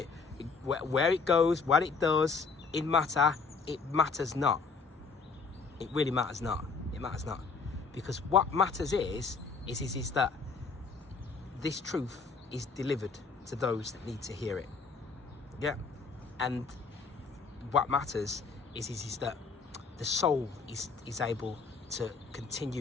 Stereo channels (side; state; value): right; quieter; 4.7 dB